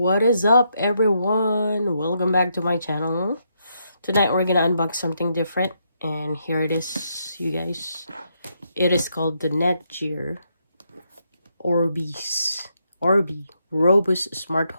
is up, everyone? Welcome back to my channel. Tonight we're gonna unbox something different, and here it is, you guys. It is called the Netgear Orbi Robust Smart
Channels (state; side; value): inverted; both; correlation -0.78